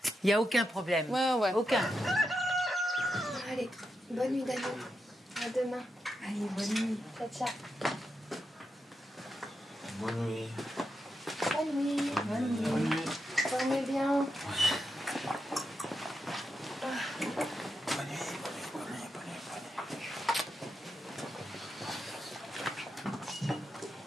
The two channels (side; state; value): both; normal; correlation 0.86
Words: n'y a aucun problème. Ouais. Aucun. Allez, bonne nuit Daniel. À demain. Allez, bonne nuit. Ciao. Bonne nuit. Bonne nuit. Bonne nuit. Dormez bien.